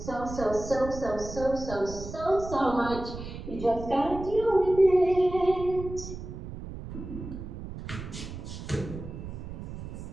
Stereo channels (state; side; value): noise; right; rumble, 10 dB below the sound